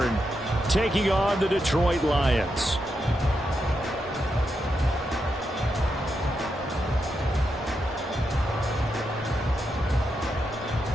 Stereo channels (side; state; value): both; normal; correlation 0.84